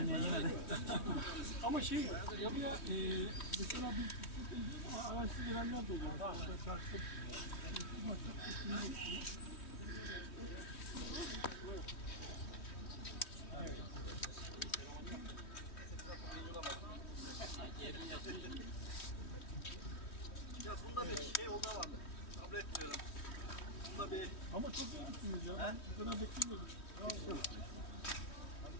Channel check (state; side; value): late; right; 3.1 ms